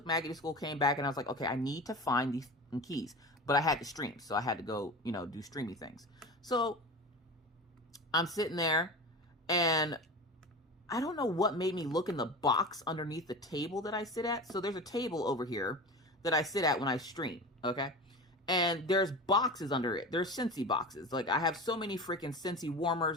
Maggie to school, came back, and I was like, okay, I need to find these keys. But I had to stream, so I had to go, you know, do streamy things. So I'm sitting there, and I don't know what made me look in the box underneath the table that I sit at. So there's a table over here that I sit at when I stream, okay? And there's boxes under it. There's Scentsy boxes. Like, I have so many freaking Scentsy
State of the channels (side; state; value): both; normal; correlation 0.31